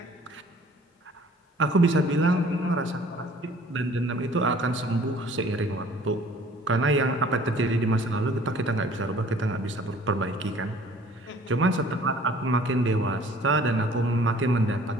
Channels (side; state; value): both; normal; correlation 0.52